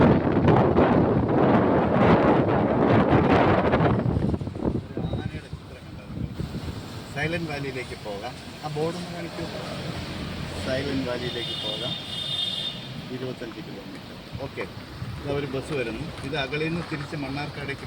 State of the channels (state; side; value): identical; both; correlation 1.00